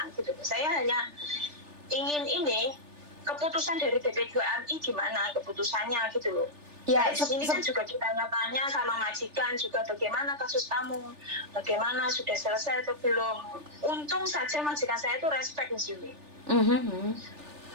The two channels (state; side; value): late; left; 3.4 ms